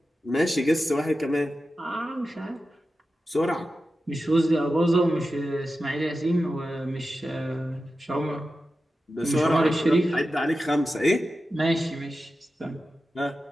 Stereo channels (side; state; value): both; normal; correlation 0.92